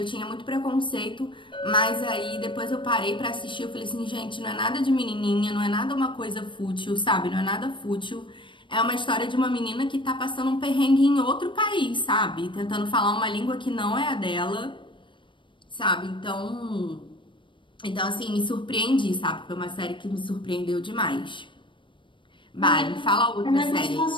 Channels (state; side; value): late; right; 0.24 ms